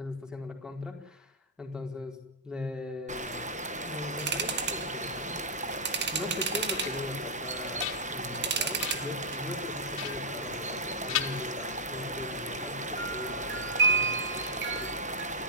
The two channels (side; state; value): both; normal; correlation -0.10